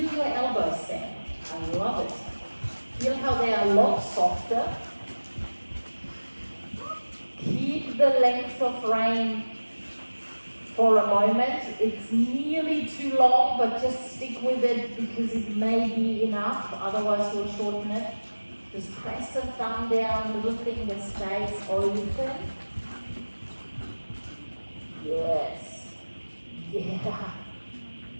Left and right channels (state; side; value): inverted; both; correlation -1.00